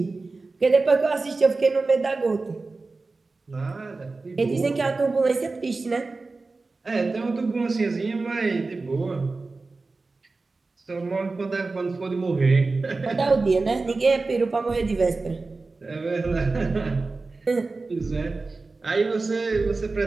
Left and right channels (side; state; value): left; quieter; 3.7 dB